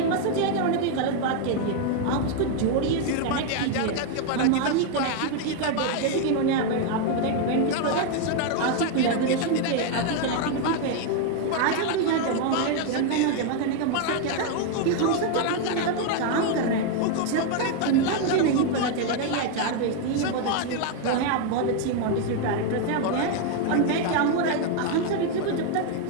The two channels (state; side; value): different; both; correlation 0.01